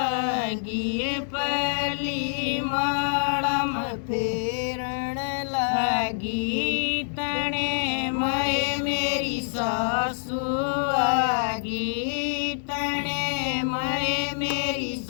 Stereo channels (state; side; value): silent; right; digital silence